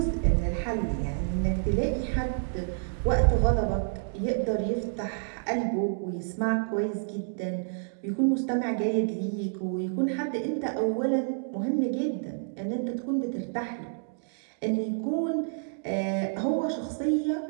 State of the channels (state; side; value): silent; left; digital silence